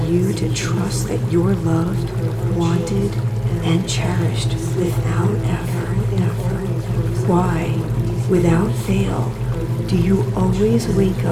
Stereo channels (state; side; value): identical; both; correlation 1.00